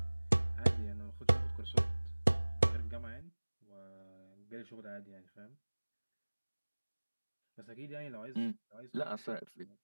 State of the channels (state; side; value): inverted; both; correlation -1.00